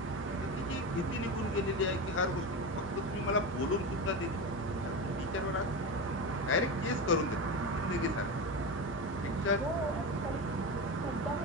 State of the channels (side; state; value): left; noise; hum, 19 dB below the sound